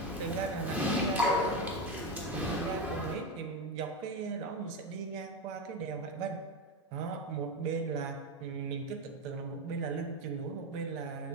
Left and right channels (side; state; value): both; normal; correlation 0.15